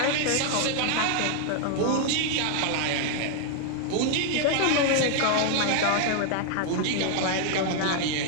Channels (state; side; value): different; both; correlation 0.00